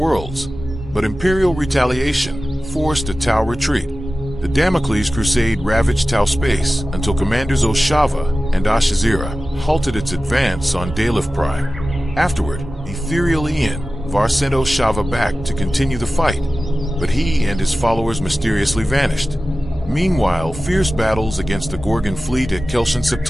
but Imperial retaliation forced a Tau retreat. The Damocles Crusade ravaged Tau space until Commanders Oshava and Ashazira halted its advance on Dalef Prime. Afterward, Ethereal Var sent Oshava back to continue the fight, but he and his followers mysteriously vanished. Meanwhile, fierce battles against the Gorgon fleet at Kelshan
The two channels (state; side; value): normal; both; correlation 0.95